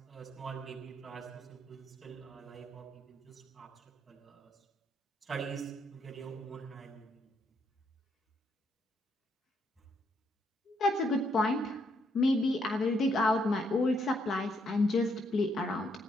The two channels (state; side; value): normal; both; correlation 0.74